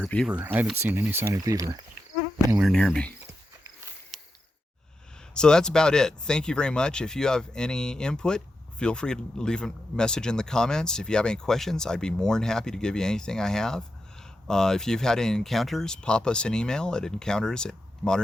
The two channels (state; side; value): normal; both; correlation 0.88